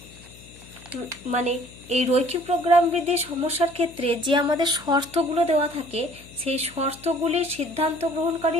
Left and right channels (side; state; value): left; noise; hum, 21 dB below the sound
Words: মানে এই রৈখিক প্রোগ্রাম বৃদ্ধির সমস্যার ক্ষেত্রে যে আমাদের শর্তগুলো দেওয়া থাকে, সেই শর্তগুলির সিদ্ধান্ত গ্রহণকারী